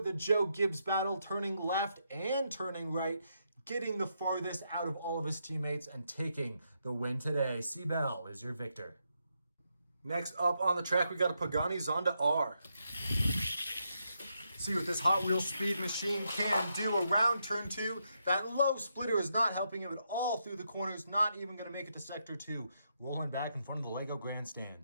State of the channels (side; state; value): both; inverted; correlation -0.81